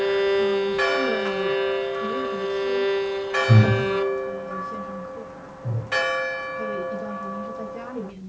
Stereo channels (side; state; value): both; identical; correlation 1.00